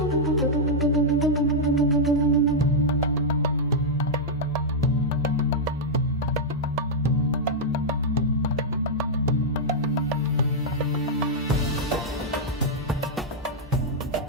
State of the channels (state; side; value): normal; both; correlation -0.05